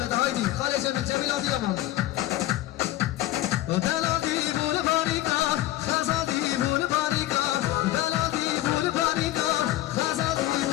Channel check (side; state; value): right; quieter; 15.3 dB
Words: هایدی خاله جمیل جمیل آدی امان دلادی بول باریکا خزادی بول باریکا دلادی بول باریکا خزادی